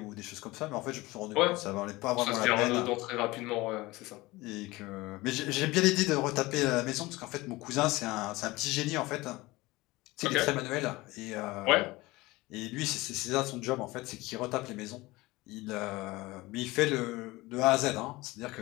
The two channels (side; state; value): right; quieter; 20.6 dB